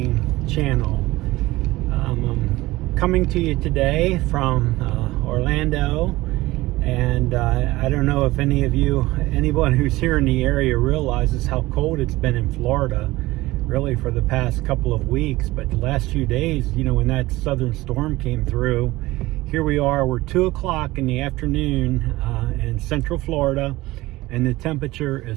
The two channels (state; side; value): quieter; left; 18.9 dB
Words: channel. I'm coming to you today from Orlando, and I don't know if anyone who's here in the area realizes how cold it's been in Florida really for the past couple of weeks. But the last few days, when that southern storm came through, here we are, we're 2 o'clock in the afternoon in central Florida, and the temperature